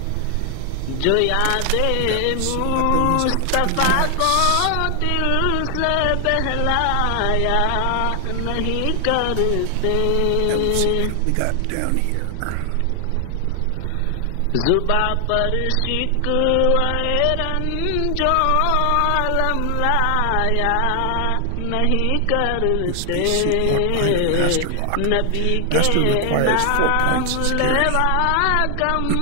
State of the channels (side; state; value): both; different; correlation 0.00